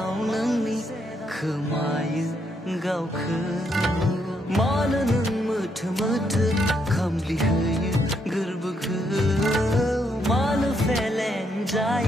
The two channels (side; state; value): both; normal; correlation 0.76